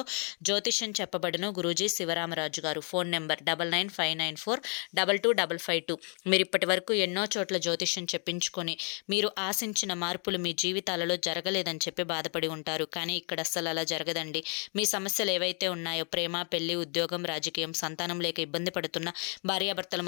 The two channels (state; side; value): quieter; right; 39.1 dB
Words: జ్యోతిష్యం చెప్పబడును గురూజీ శివరామరాజు గారు. Phone number 9959422552. మీరు ఇప్పటి వరకు ఎన్నో చోట్ల జ్యోతిష్యం చెప్పించుకొని మీరు ఆశించిన మార్పులు మీ జీవితాలలో జరగలేదని చెప్పి బాధపడి ఉంటారు. కానీ ఇక్కడ అస్సలు అలా జరగదండి. మీ సమస్యలు ఏవైతే ఉన్నాయో, ప్రేమ, పెళ్లి, ఉద్యోగం, రాజకీయం, సంతానం లేక ఇబ్బంది పడుతున్న, భార్యాభర్తల